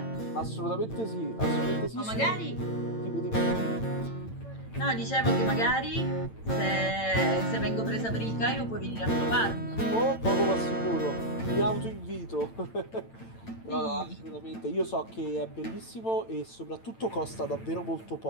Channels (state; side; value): late; right; 8.9 ms